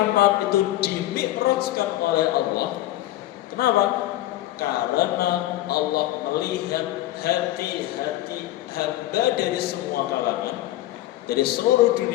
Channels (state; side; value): quieter; right; 15.4 dB